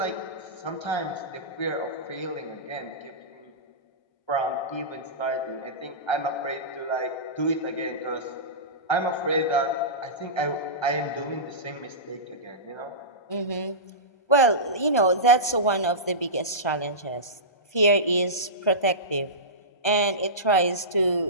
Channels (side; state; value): right; late; 1.3 ms